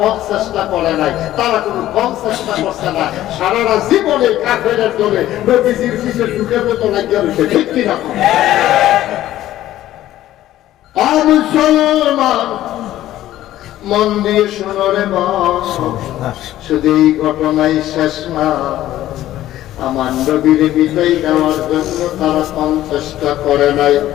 চেষ্টা করে নাই, তারা কোনো কম চেষ্টা করছে না। সারাটা জীবনে কাফেরের দলে নবীজির পিছে ঢুকের মতো লাগিয়ে রয়েছে, ঠিক কিনা? মুসলমান মন দিয়ে শোনো রে মন, শুধু এই ঘটনাই শেষ না। আমার নবীর বিদায় দেওয়ার জন্য তারা কম চেষ্টা করে নাই।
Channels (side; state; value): right; quieter; 13.8 dB